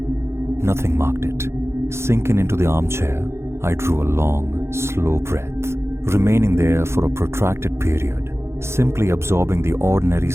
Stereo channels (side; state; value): left; late; 0.13 ms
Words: Nothing marked it. Sinking into the armchair, I drew a long, slow breath, remaining there for a protracted period, simply absorbing the ordinary